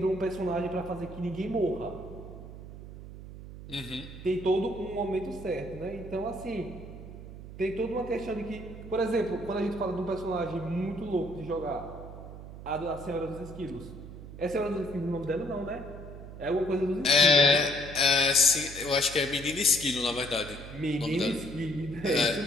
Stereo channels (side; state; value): right; noise; hum, 13 dB below the sound